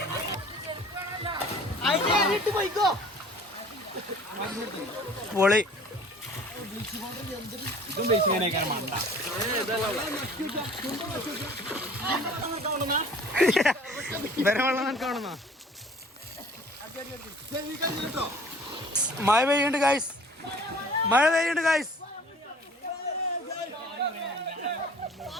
പൊളി. ഇതും ബേസിക്കാനേക്കാണ് മണ്ട. വെള്ളം കാണുന്ന മഴ പെയ്യുണ്ട് ഗൈസ്. മഴ പെയ്യുണ്ട് ഗൈസ്.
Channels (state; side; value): normal; both; correlation 0.49